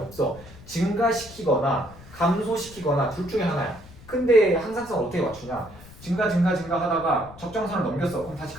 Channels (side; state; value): left; noise; rumble, 19 dB below the sound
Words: 증가시키거나 감소시키거나 둘 중에 하나야. 근데 항상성 어떻게 맞추냐? 증가 하다가 적정선을 넘겼어. 그럼 다시